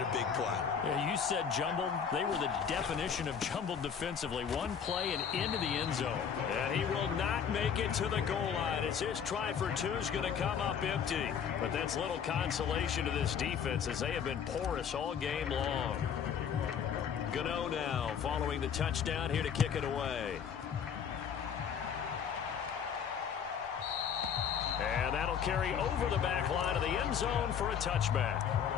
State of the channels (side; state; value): right; quieter; 7.5 dB